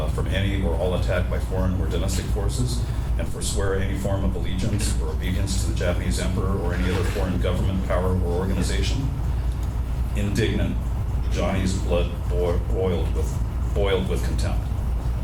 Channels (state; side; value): identical; both; correlation 1.00